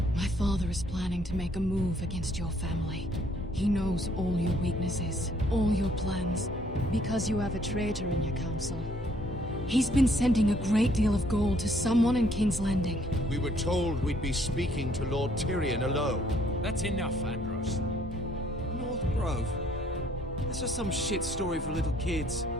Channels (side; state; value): both; normal; correlation 0.65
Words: My father is planning to make a move against your family. He knows all your weaknesses, all your plans, because you have a traitor in your council. He's been sending a great deal of gold to someone in King's Landing. We were told we'd be speaking to Lord Tyrion alone. That's enough, Andros. North Grove? That's just some shit story for little kids.